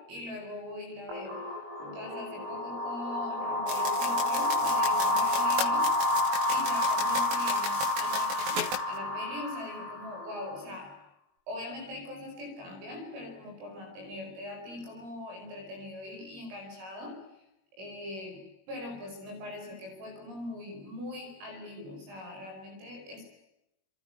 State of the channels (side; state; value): left; late; 21 ms